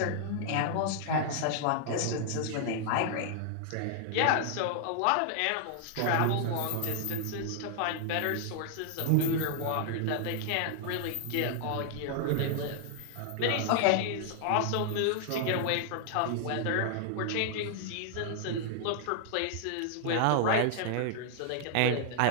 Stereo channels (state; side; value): different; both; correlation 0.00